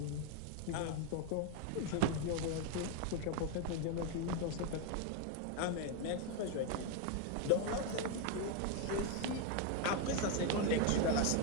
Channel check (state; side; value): different; both; correlation 0.01